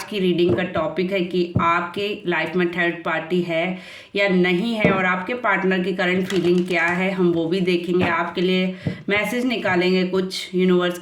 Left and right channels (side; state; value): both; identical; correlation 1.00